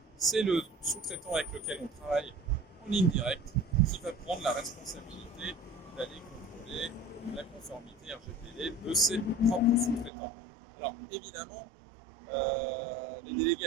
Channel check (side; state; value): left; drops out; at 10.1 s